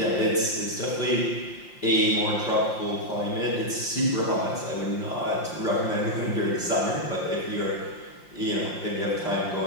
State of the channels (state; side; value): late; right; 5.7 ms